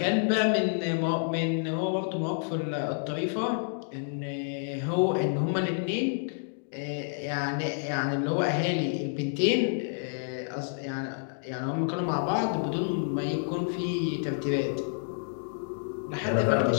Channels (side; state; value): right; silent; digital silence